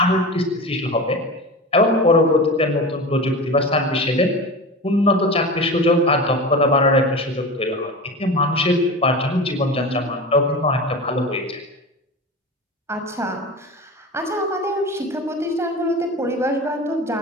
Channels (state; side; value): normal; both; correlation 0.30